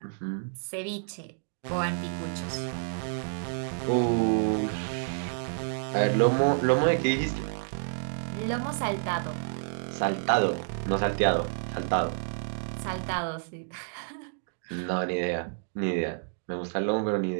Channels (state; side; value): silent; left; digital silence